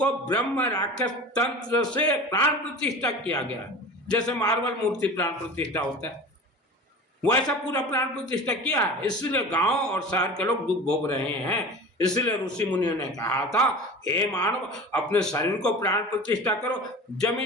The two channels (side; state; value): both; normal; correlation 0.35